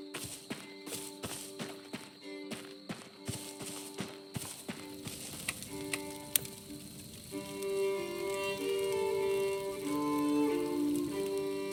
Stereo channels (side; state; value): both; identical; correlation 1.00